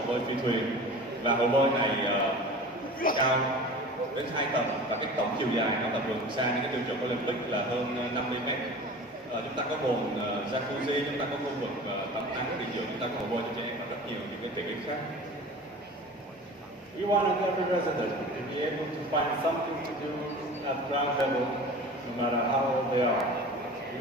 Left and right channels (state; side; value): normal; both; correlation 0.38